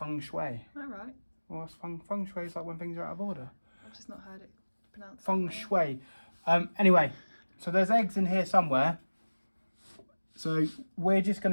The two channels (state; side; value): inverted; both; correlation -1.00